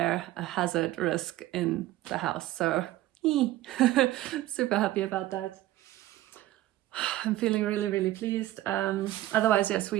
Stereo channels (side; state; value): left; quieter; 15.4 dB